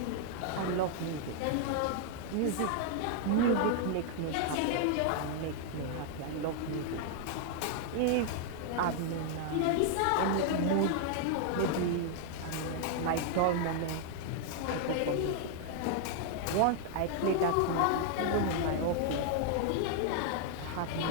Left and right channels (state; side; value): different; both; correlation 0.00